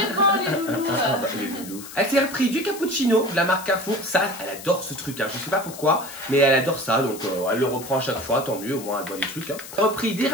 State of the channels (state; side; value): noise; left; hiss, 14 dB below the sound